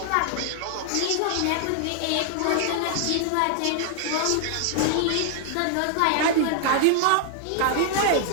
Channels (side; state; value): both; different; correlation 0.00